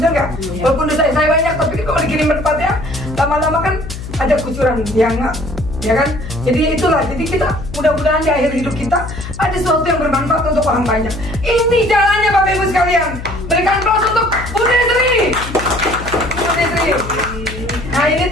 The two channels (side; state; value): left; noise; hum, 10 dB below the sound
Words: nggak? Walaupun dosa saya banyak, tapi kalau dikirim bermanfaat ya, lama-lama kan ada kucuran, ya nggak? Ya kan? Jadi itulah, jadi kita mudah-mudahan di akhir hidup kita ada sesuatu yang bermanfaat untuk orang banyak. Ini jalannya Bapak Ibu sekalian. Berikan aplaus untuk Budi Sri. Nah ini